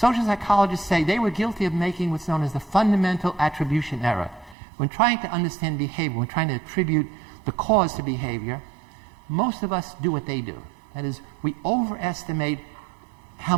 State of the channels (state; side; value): drops out; left; at 4.5 s